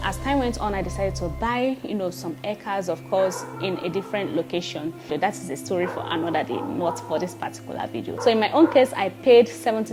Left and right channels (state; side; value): identical; both; correlation 1.00